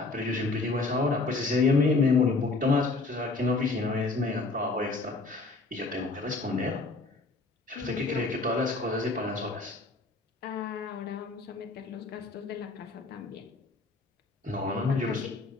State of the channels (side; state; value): right; quieter; 3.6 dB